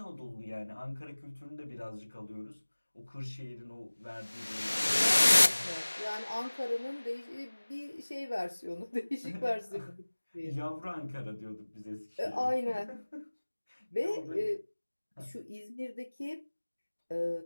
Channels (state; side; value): inverted; both; correlation -1.00